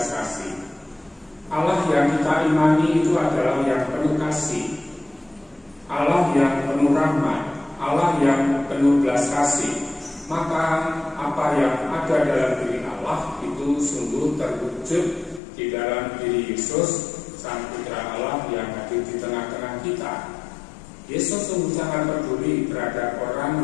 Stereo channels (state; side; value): drops out; right; at 15.4 s